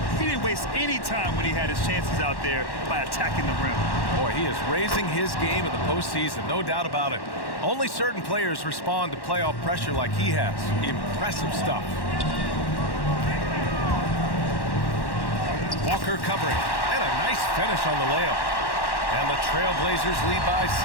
He didn't waste any time when he had his chances out there by attacking the rim. Boy, he is raising his game in the postseason, no doubt about it. Only certain players respond to playoff pressure like he has. Impressive stuff. Walker covering, and a nice finish on the layup. And the Trailblazers lead by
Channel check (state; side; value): late; right; 1.1 ms